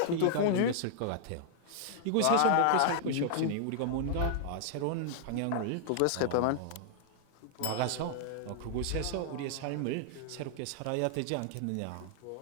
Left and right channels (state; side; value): different; both; correlation -0.01